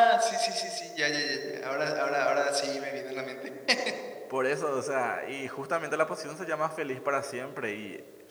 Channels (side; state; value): both; identical; correlation 1.00